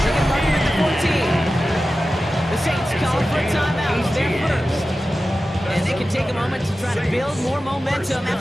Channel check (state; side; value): normal; both; correlation 0.94